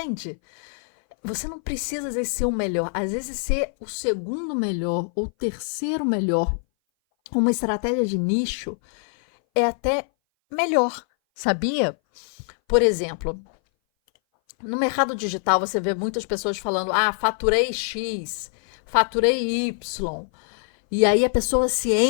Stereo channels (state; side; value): silent; right; 59 dB below the other